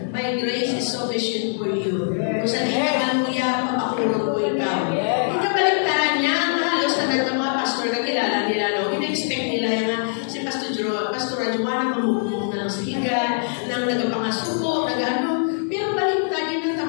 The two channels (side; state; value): right; silent; digital silence